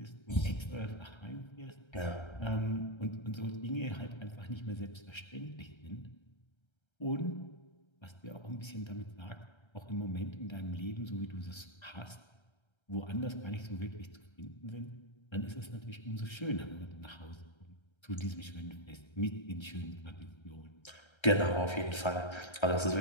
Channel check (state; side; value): late; right; 1.3 ms